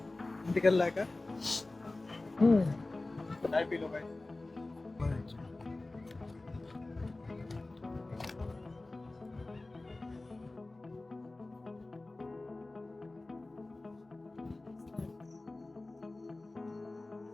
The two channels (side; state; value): right; quieter; 3.0 dB